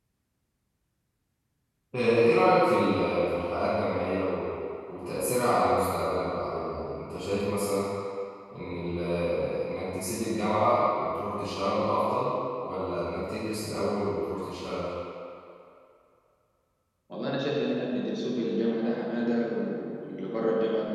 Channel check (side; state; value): both; identical; correlation 1.00